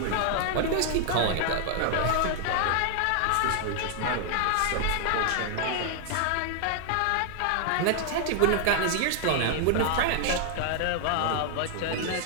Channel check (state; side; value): different; both; correlation 0.00